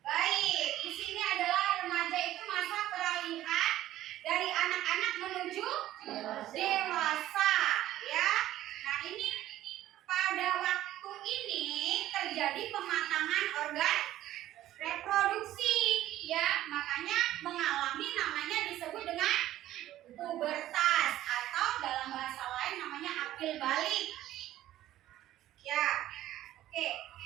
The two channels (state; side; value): quieter; left; 13.8 dB